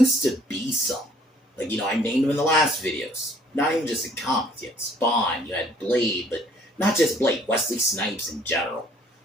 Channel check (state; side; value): normal; both; correlation 0.59